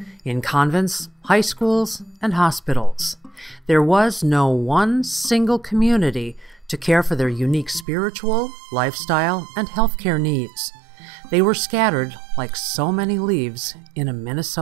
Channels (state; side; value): drops out; left; at 7.9 s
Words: in convents, high schools, and hospitals. There was no one single community to care for their unique spiritual, lifestyle, and healthcare needs. They were scattered like so many leaves in a